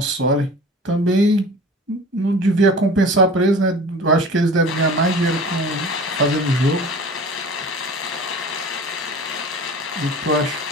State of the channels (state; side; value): normal; both; correlation 0.40